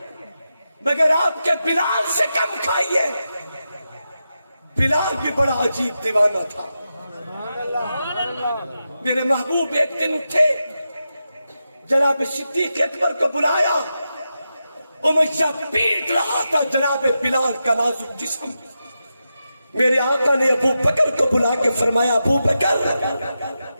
مگر آپ کے بلال سے کم کھائیے. بلال بھی بڑا عجیب دیوانہ تھا. میرے محبوب ایک دن اٹھے، جناب صدیق اکبر کو بلایا. امیہ پیٹ رہا تھا جناب بلال کا نازک جسم. میرے آقا نے ابو بکر کو بلا کے فرمایا ابو بکر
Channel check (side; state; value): both; inverted; correlation -0.89